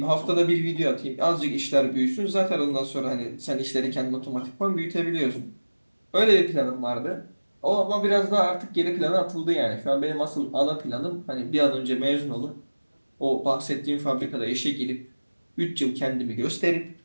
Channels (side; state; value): both; inverted; correlation -1.00